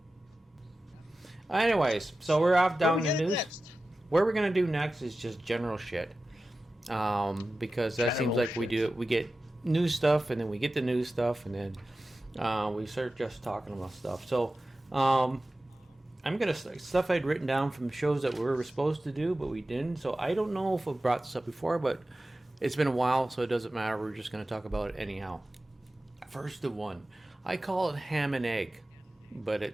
Anyways, so we're off down the news. Next? What we're gonna do next is just general shit, because that seems like we get news stuff, and then we get the news stuff, and then we start just talking about stuff. So I'm gonna stuff I'd written down from shows that we were supposed to do, but we didn't. So I don't know if I've brought this up before, but it's been a while, so it doesn't matter. We're just gonna talk about it anyhow. First of one, I call it ham and egg, but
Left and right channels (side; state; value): both; normal; correlation 0.95